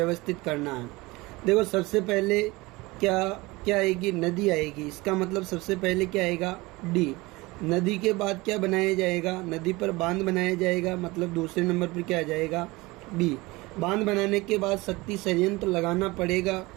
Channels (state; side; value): quieter; left; 22.1 dB